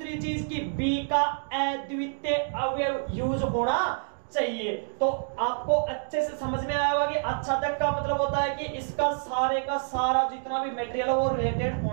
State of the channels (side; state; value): left; silent; digital silence